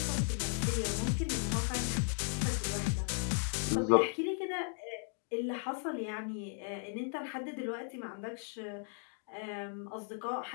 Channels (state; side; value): silent; right; 54 dB below the other